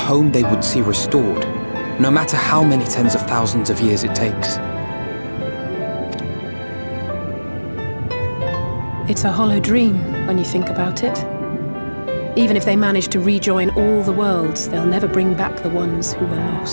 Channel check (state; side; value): inverted; both; correlation -1.00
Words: they would see restored, no matter how many tens of thousands of years it takes. It's a hollow dream when you think about it. Even if they manage to rejoin all the worlds, they'll never bring back the ones who were